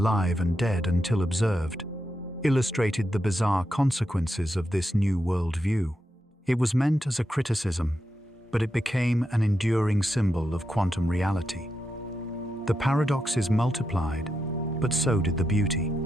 and dead until observed illustrated the bizarre consequences of this new worldview. It was meant as a criticism, but it became an enduring symbol of quantum reality. The paradoxes multiplied, but so did the beauty.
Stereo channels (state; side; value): normal; both; correlation 0.86